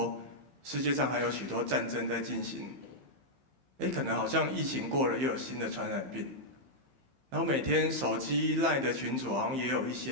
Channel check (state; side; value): late; left; 15 ms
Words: 世界上还有许多战争在进行，可能好像疫情过了，又有新的传染病，然后每天手机 LINE 的群组好像也有一